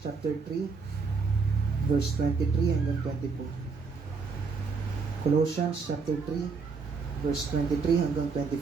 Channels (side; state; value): left; quieter; 4.8 dB